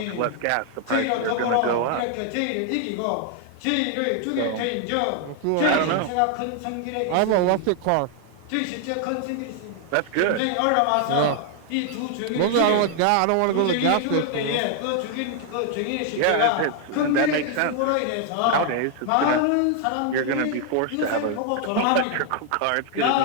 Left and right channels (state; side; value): different; both; correlation 0.00